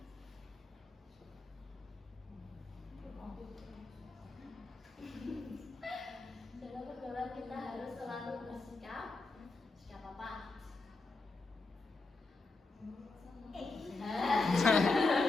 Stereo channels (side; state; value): right; quieter; 3.6 dB